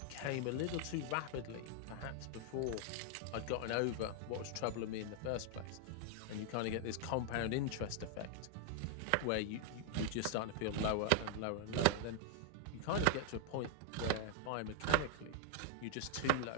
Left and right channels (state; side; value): different; both; correlation 0.00